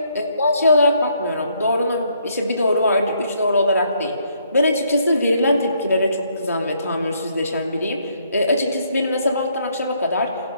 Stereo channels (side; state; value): both; inverted; correlation -0.70